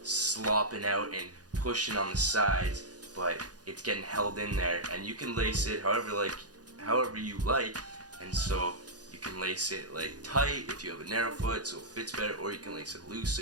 slopping out and pushing on the sides, but it's getting held in there, and you can lace it however you like. And so you can lace it tight if you have a narrow foot so it fits better, or you can lace it loose so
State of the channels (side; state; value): left; late; 0.68 ms